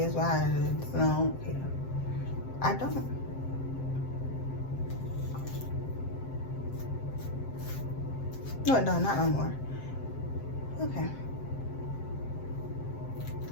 why? I don't care. I don't. No, it don't. Not no more. Okay.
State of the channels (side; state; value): right; late; 7.6 ms